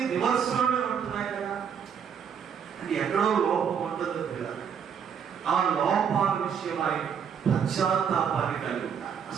రివర్స్లోనే ఉంటున్నాయి కదా. అంటే ఎక్కడో లోపం ఉంటుంది కదా. ఆ లోపాల విషయమై పశ్చాత్తాపాన్ని కలిగి ఉంటారు.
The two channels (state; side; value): quieter; left; 7.5 dB